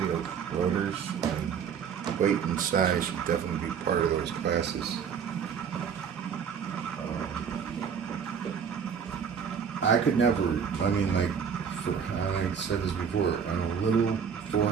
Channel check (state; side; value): quieter; left; 7.1 dB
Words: of rotors, and weight and size should definitely be part of those classes. I could never, like I said this before, on a little